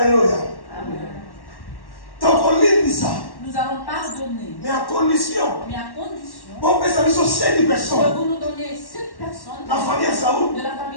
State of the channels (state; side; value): late; right; 1.1 ms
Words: Amen. Donc on lit ça. Nous allons pardonner. Mais à condition. Que vous nous donniez 7 personnes. La famille à Saoul. De la